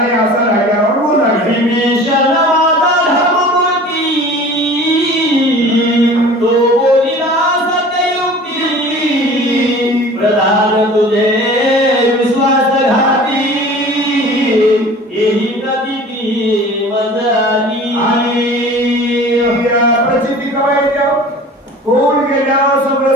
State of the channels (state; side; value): normal; both; correlation 0.43